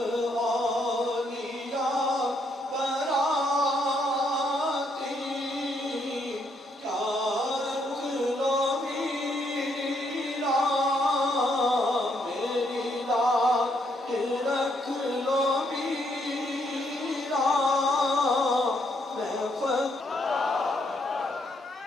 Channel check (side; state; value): both; normal; correlation 0.74